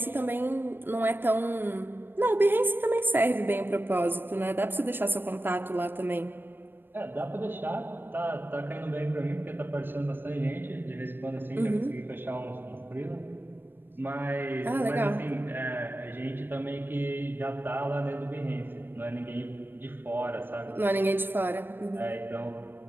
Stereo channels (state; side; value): late; left; 0.097 ms